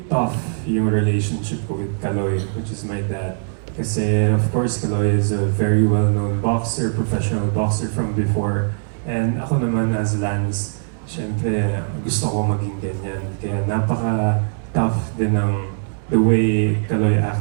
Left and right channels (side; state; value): left; silent; digital silence